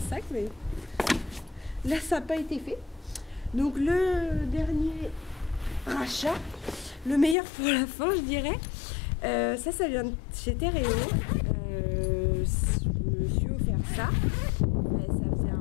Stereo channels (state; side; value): drops out; right; at 7.4 s